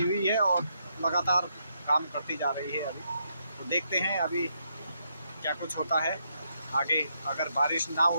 हुई है और लगातार काम करती जा रही है अभी। तो देखते हैं अभी क्या कुछ होता है आगे। अगर बारिश ना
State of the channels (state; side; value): inverted; both; correlation -0.78